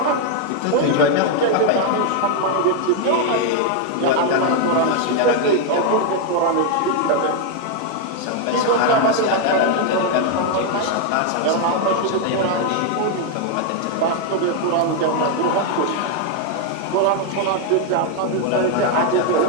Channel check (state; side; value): different; both; correlation 0.01